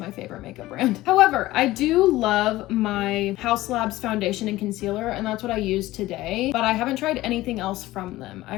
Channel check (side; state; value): right; quieter; 17.1 dB